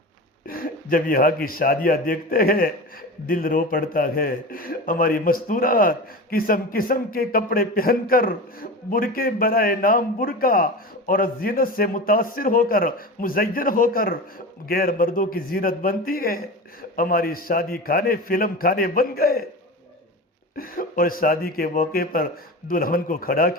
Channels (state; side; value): normal; both; correlation 0.29